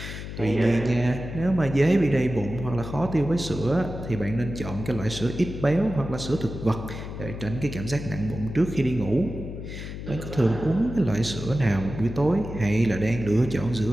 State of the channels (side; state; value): left; noise; hum, 9 dB below the sound